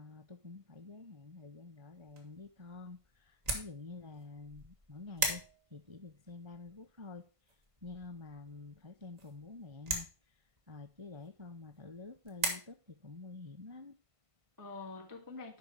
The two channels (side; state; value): left; late; 1.5 ms